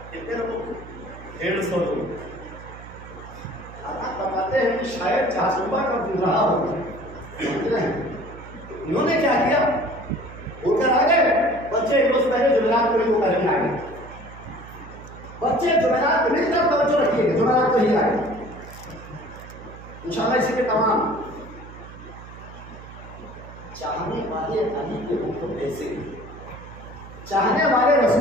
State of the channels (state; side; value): noise; right; hum, 16 dB below the sound